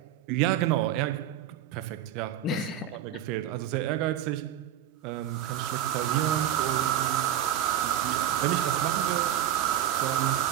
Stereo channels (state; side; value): quieter; left; 10.7 dB